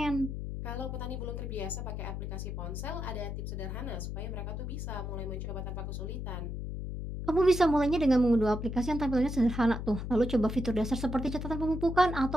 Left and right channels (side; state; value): left; noise; hum, 5 dB below the sound